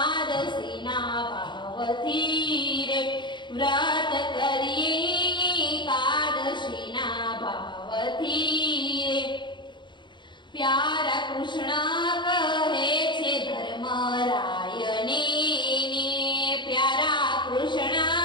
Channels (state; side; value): late; right; 0.22 ms